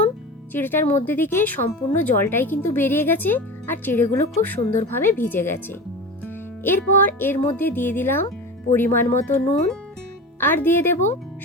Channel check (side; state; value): both; normal; correlation 0.30